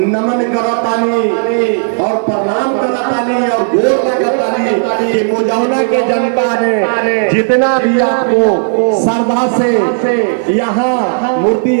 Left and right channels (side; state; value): left; silent; digital silence